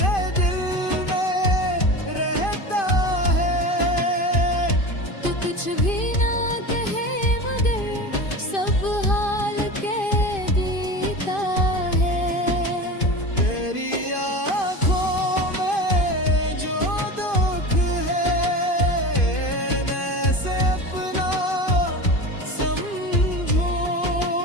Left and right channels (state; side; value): late; right; 2.5 ms